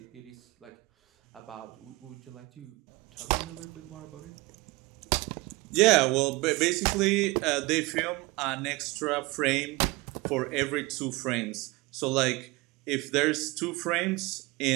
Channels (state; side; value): quieter; left; 23.3 dB